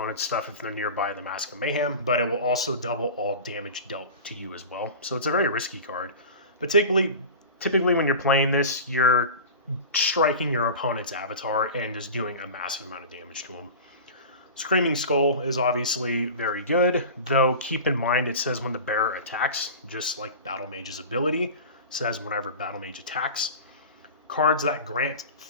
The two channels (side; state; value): both; inverted; correlation -0.33